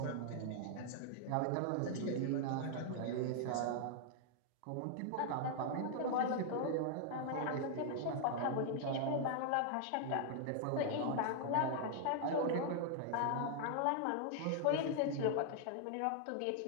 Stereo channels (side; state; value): both; different; correlation 0.00